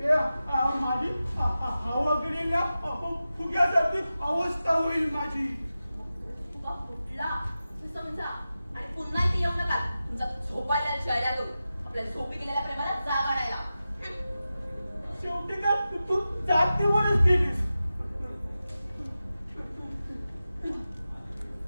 माझी हवा गेलेल्या फुग्यासारखी अवस्था होईल माझी तुका फुटला हे समजा आणि पुन्हा इथे येऊ नका तुमचा झोपायला चेहरा करू आपल्या झोपी गेलेल्या प्रेमाला जाग आणायला शेवटी काय तू जातीवरच गेलीस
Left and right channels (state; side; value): inverted; both; correlation -0.93